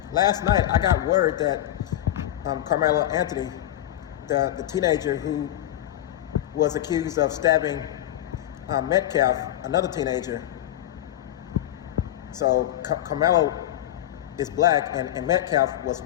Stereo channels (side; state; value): right; quieter; 13.0 dB